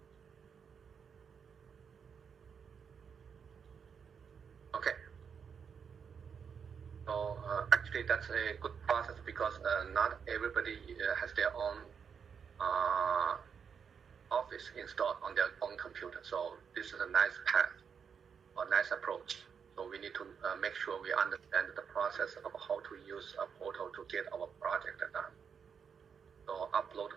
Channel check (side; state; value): left; quieter; 6.8 dB